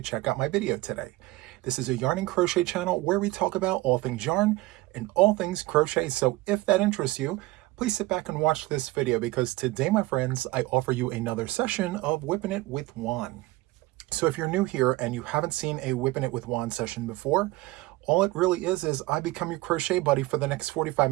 check out my video today. This is a yarn and crochet channel where we talk about all things yarn and all things crochet. So if that interests you, please sit back and watch this video because today, my friends, I offer you another session of Whipping It with Juan. So if you're new here and you haven't seen a Whipping It with Juan session before, all it really is I become your crochet buddy for the next 45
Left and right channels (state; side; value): quieter; left; 19.3 dB